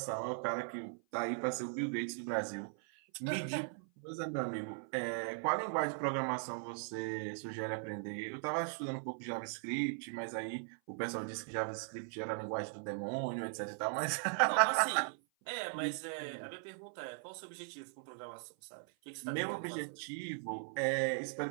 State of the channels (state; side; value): silent; left; 52 dB below the other